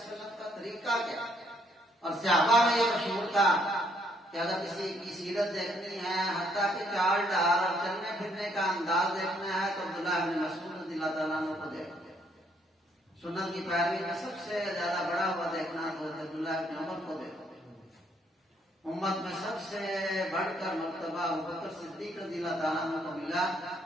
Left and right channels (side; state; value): both; normal; correlation 0.69